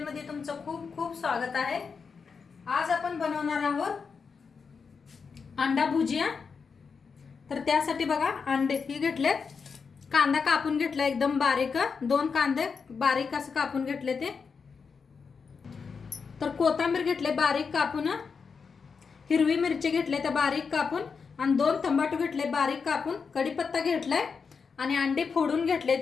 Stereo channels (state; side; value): quieter; right; 5.5 dB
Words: तुमचं खूप खूप स्वागत आहे. आज आपण बनवणार आहोत अंडा भुजिया. तर त्यासाठी बघा अंडे ही घेतलेत, कांदा कापून घेतला एकदम बारीक, 2 कांदे बारीक असं कापून घेतले ते. तर कोथिंबीर घेतले बारीक कापून, हिरवी मिरची घेतले त्या बारीक कापून आणि 2 टमाटो घेतले बारीक कापून, कढीपत्ता घेतलाय आणि अंडे फोडून घेतले